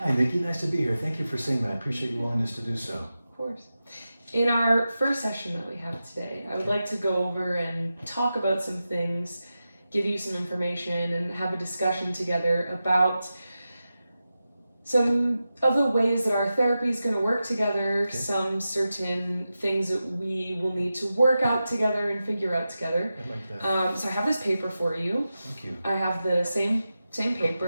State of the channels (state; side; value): inverted; both; correlation -0.92